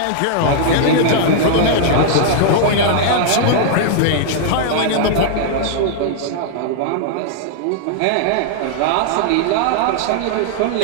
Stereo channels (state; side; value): different; both; correlation -0.01